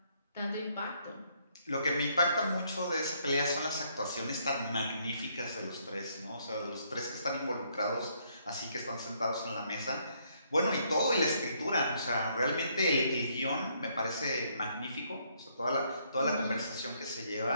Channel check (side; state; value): both; inverted; correlation -0.70